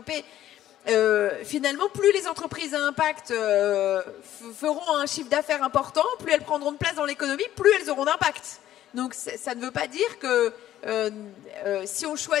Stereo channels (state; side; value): quieter; right; 12.7 dB